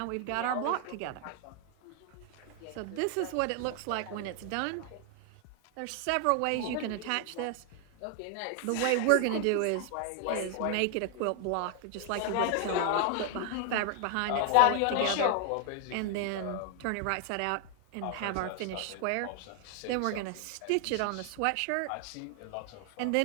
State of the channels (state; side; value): different; both; correlation 0.00